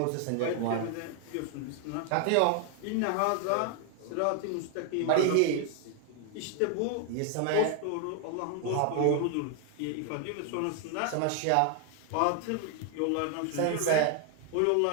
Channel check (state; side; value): different; both; correlation 0.00